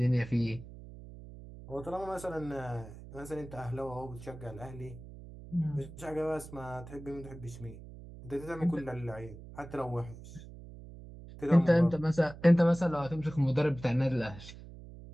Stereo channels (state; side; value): noise; right; hum, 15 dB below the sound